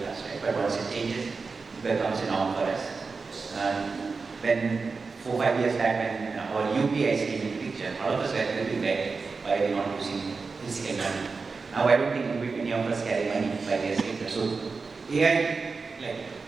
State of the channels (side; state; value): left; quieter; 4.5 dB